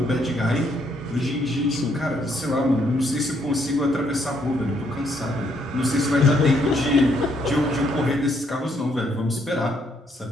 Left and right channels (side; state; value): both; normal; correlation 0.71